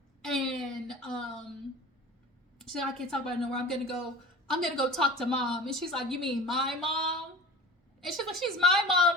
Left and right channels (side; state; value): both; normal; correlation 0.38